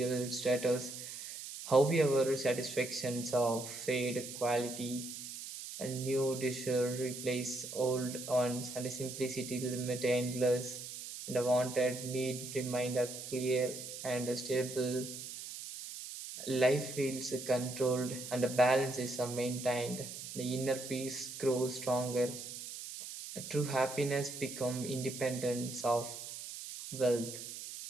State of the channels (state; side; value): noise; right; hiss, 9 dB below the sound